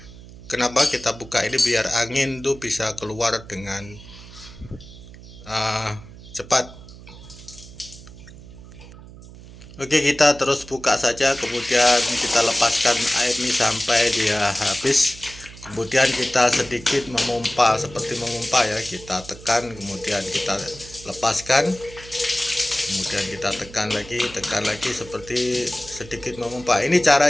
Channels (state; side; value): noise; right; hum, 17 dB below the sound